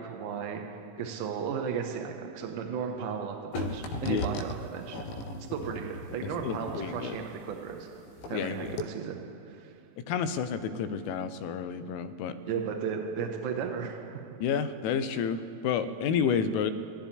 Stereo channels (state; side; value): late; right; 18 ms